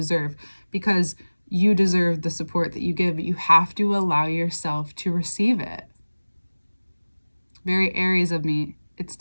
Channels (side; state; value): both; inverted; correlation -1.00